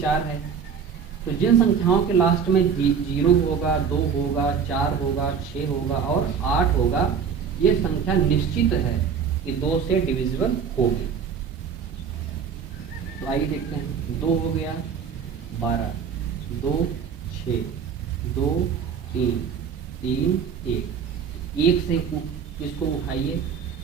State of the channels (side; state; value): left; quieter; 6.8 dB